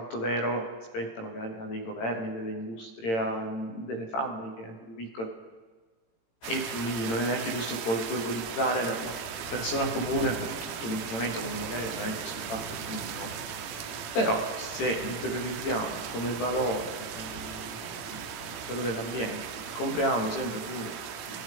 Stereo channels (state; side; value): late; right; 17 ms